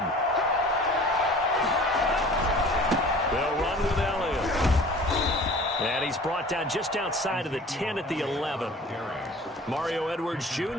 They'll run with Elliott. And he's brought down just outside of the 10 at the 11. Mario Edwards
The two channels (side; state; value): both; normal; correlation 0.45